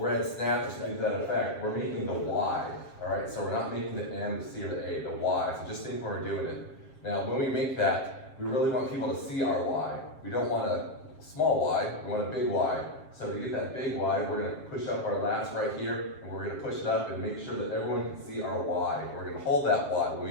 snatch or something to that effect, we're making the why. All right. So we're not making the M, the C, or the A. The why. So just think when we're doing it. Now, when we make that, we really want people to see our why. We don't want a small y. We want a big Y. So to get that big Y, we're going to push up our lats right here, and we're going to push it up and make sure that everyone can see our Y. We're going to hold that Y when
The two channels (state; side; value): late; right; 7.5 ms